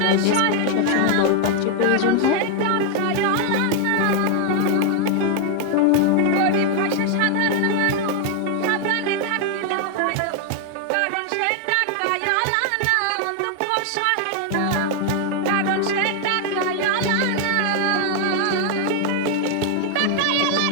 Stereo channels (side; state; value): both; different; correlation 0.00